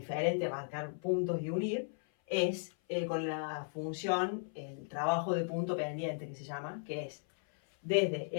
de marcar puntos y unir es con la función, el trabajo de punto pendiente que se llama, que es desde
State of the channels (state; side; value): silent; right; 54 dB below the other